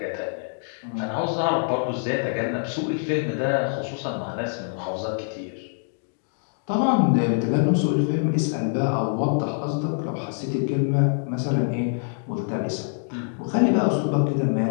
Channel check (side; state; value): right; silent; digital silence